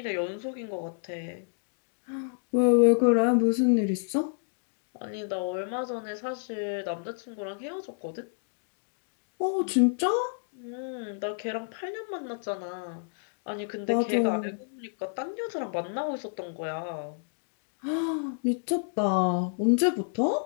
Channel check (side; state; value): right; silent; digital silence